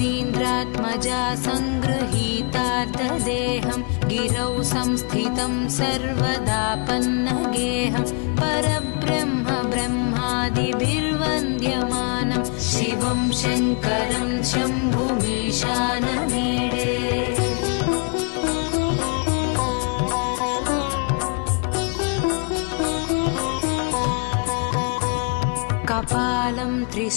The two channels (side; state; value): right; quieter; 37.5 dB